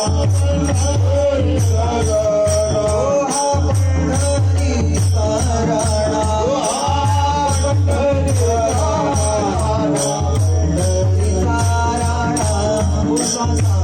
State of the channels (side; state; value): both; identical; correlation 1.00